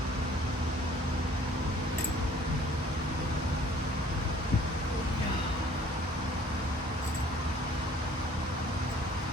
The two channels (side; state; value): both; normal; correlation 0.55